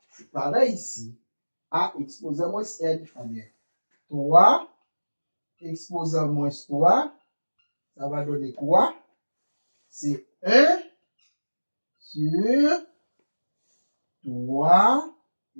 c'est pareil ici. A exposant moins N. Eh bien, 3 exposant moins 3, ça va donner quoi? C'est 1 sur 3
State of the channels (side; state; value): both; inverted; correlation -1.00